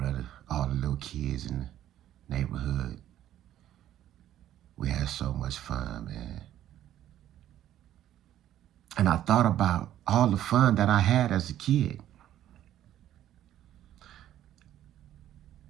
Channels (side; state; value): left; quieter; 12.1 dB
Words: of all the little kids in the neighborhood. We had so much fun, man. And I thought about all the fun that I had as a kid